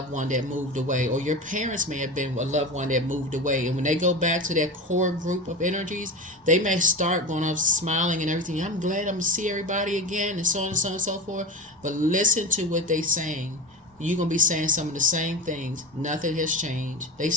one that moved away, or your parents may have been a loved one that moved away. And when they go back to that core group of energies, they may start going up smiling and everything. I'm glad I'm going to see everybody again, and so on and so on and so forth. But listen to what they're saying. You're going to be saying some of the same things. Nothing has changed. They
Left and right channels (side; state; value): both; normal; correlation 0.27